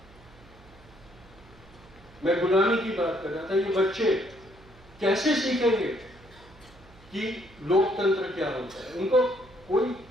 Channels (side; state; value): right; noise; hum, 24 dB below the sound